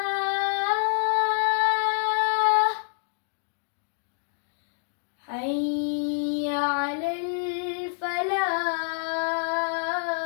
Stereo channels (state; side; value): silent; right; digital silence